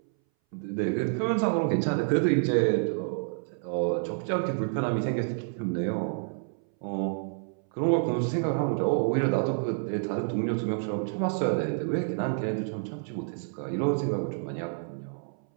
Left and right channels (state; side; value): silent; left; 59 dB below the other